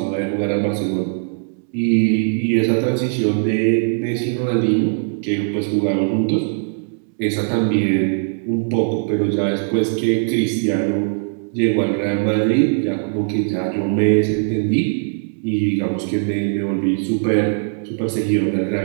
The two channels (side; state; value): left; silent; digital silence